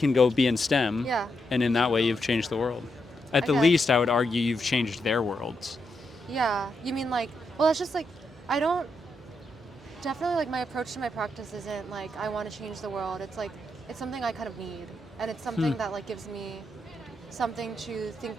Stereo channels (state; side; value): normal; both; correlation 0.82